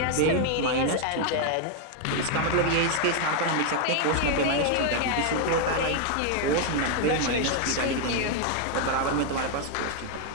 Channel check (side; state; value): both; different; correlation 0.01